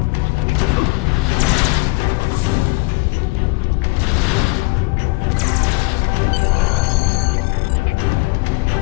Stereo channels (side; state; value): right; quieter; 27.0 dB